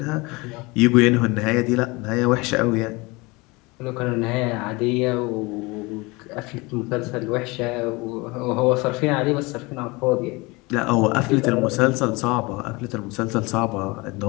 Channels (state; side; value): quieter; right; 24.7 dB